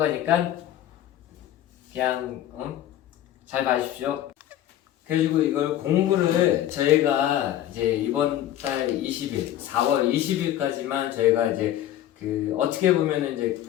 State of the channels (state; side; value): quieter; right; 12.4 dB